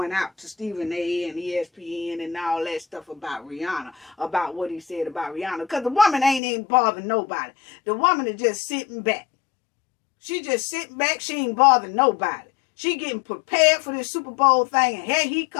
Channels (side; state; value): right; drops out; at 6.4 s